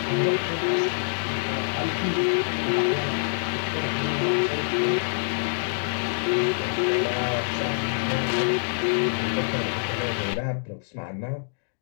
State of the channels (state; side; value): silent; right; digital silence